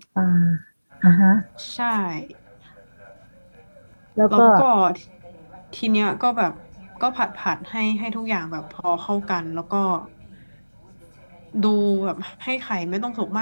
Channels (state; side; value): inverted; both; correlation -1.00